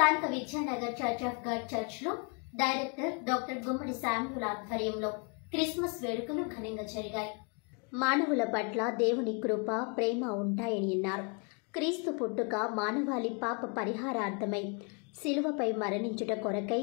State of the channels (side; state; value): right; quieter; 36.2 dB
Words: Vidyanagar church of God church లో director doctor గుమ్మడి Samuel ఆధ్వర్యంలో క్రిస్మస్ వేడుకలు ఘనంగా జరిగాయి. మానవుల పట్ల దేవుని కృప, ప్రేమ ఉంటాయని అన్నారు. క్రీస్తు పుట్టుక మానవాళి పాప పరిహారార్థమై శిలువపై మరణించుట కొరకై